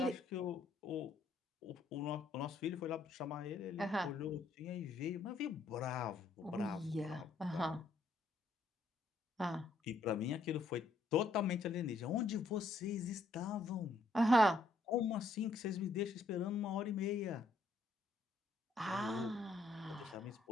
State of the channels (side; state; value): right; quieter; 3.2 dB